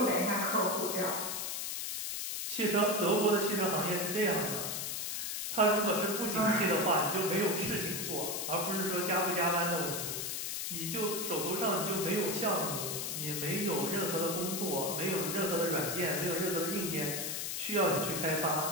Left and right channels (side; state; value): left; noise; hiss, 3 dB below the sound